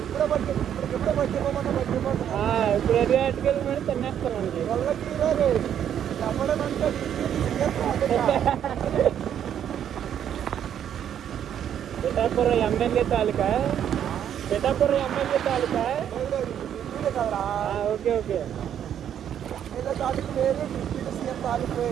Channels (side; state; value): left; quieter; 9.6 dB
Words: ఇప్పుడు ఎదురు అటుకెళ్ళి మరి తినేస్తాను మనకి. పిఠాపురం ఎమ్మెల్యే తాలూకా. పిఠాపురం ఎమ్మెల్యే తాలూకా. Okay okay.